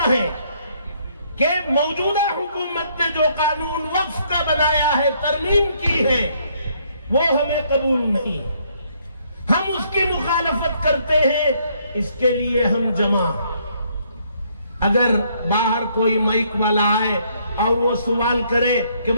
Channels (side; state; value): both; inverted; correlation -0.68